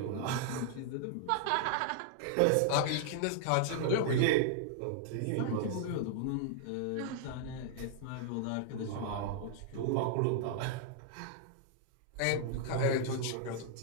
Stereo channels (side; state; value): both; different; correlation 0.00